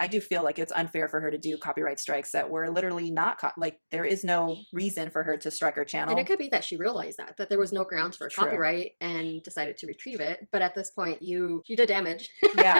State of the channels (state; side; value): inverted; both; correlation -1.00